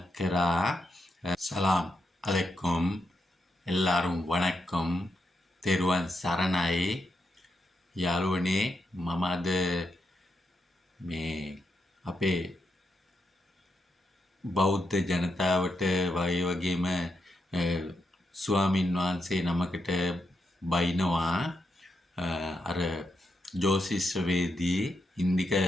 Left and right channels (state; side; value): normal; both; correlation 0.83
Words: කරා. සලාම් අලෙකුම් எல்லாரும் වණක්කම් තෙරුවන් සරණයි යාළුවනේ. මම අද මේ අපේ බෞද්ධ ජනතාවට වගේම ස්වාමින් වහන්සේ නමකට බයිනවා. අර ජෝතිෂ්‍යවේදී ඉන්දික